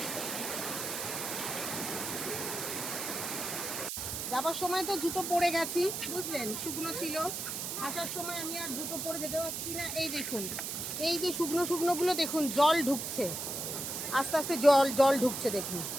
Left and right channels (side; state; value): right; noise; hiss, 4 dB below the sound